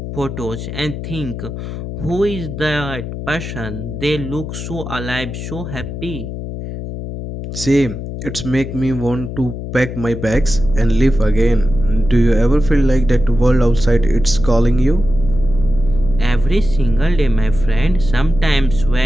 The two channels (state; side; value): noise; left; hum, 8 dB below the sound